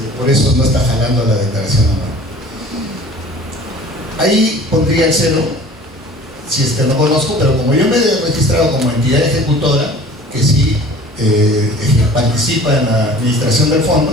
por eso no está jalando la declaración anual. Ahí pondría el cero, si es que no conozco, pero como yo me he registrado como entidad ejecutora, que sí participa en la administración del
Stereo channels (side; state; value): both; normal; correlation 0.45